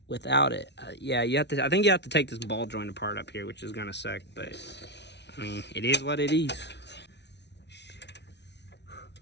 without it. Yeah, you have to. I think you have to take this ball joint apart up here, which is gonna suck. But I mean, it is what it is.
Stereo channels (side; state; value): right; late; 0.50 ms